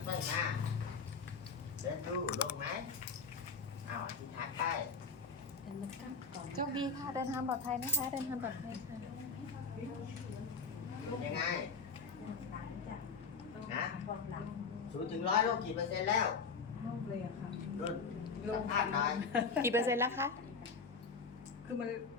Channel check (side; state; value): right; quieter; 4.9 dB